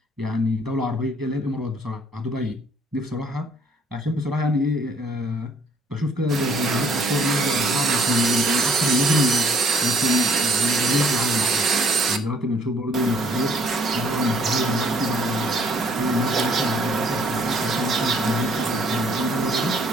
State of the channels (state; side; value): normal; both; correlation 0.61